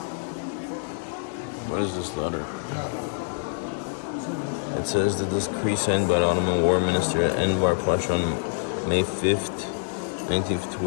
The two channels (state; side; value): silent; right; digital silence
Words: What is this letter? It says the decree signed by the Ottoman War Minister Enver Pasha on May 5th, 19th